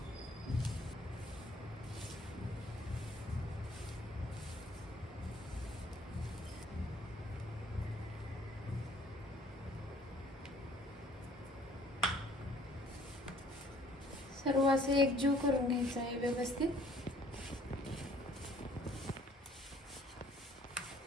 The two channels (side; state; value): both; normal; correlation 0.58